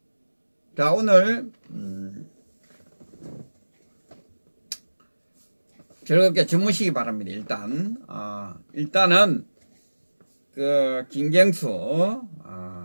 자, 오늘 즐겁게 주무시기 바랍니다. 일단은 그 김경수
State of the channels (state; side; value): inverted; both; correlation -1.00